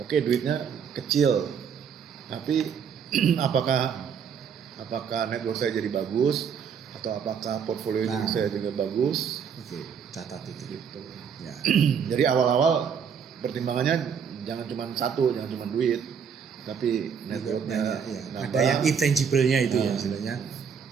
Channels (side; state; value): left; quieter; 7.0 dB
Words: duitnya kecil, tapi apakah network saya jadi bagus atau apakah portfolio saya juga bagus? Oke, catat itu. Gitu. Ya. Jadi awal-awal pertimbangannya jangan cuma satu, jangan cuma duit, tapi networknya Ya. nambah. Ada yang intangible-nya itu ya istilahnya,